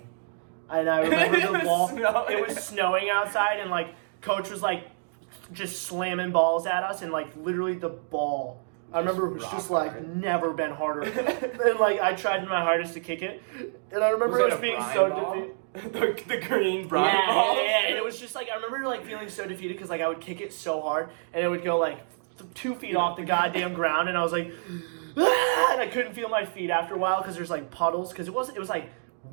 and I remember the ball. It was snowing outside, and like coach was like just slamming balls at us, and like literally the ball. I remember it was just like never been harder, and like I tried my hardest to kick it, and I remember it was being so defeated. The green brine ball. Yeah. It was just like I remember like feeling so defeated because like I would kick it so hard and it would go like 2 feet off the goddamn ground, and I was like, ah! And I couldn't feel my feet after a while because there's like puddles, because it was like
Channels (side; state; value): left; silent; digital silence